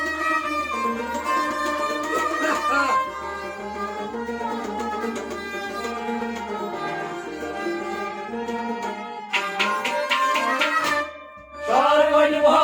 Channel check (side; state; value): both; identical; correlation 1.00